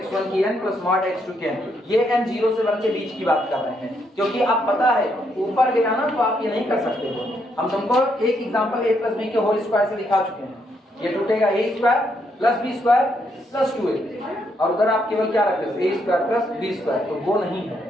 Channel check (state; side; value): normal; both; correlation 0.76